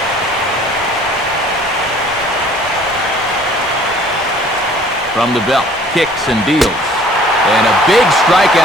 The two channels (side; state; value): both; normal; correlation 0.53